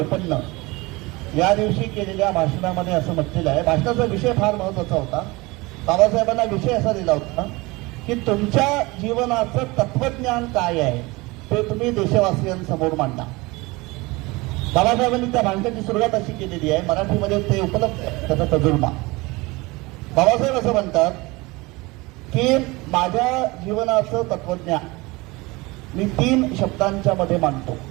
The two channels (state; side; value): quieter; left; 23.3 dB